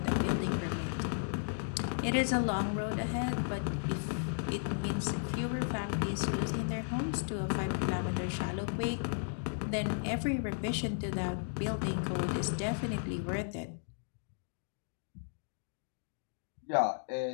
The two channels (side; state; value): right; silent; digital silence